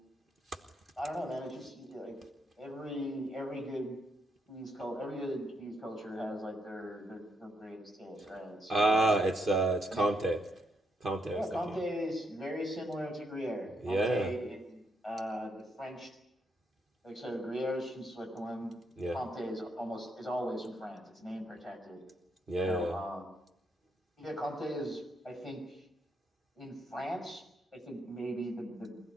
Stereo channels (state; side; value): normal; both; correlation 0.77